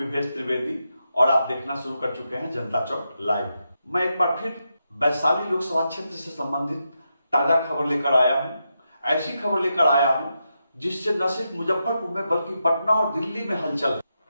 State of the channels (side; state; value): both; inverted; correlation -0.86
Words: त्रिवेदी और आप देखना शुरू कर चुके हैं जनता चौक लाइव। मैं एक बार फिर वैशाली लोकसभा क्षेत्र से संबंधित ताजा खबर लेकर आया हूं। ऐसी खबर लेकर आया हूं जिससे न सिर्फ मुजफ्फरपुर में बल्कि पटना और दिल्ली में हलचल,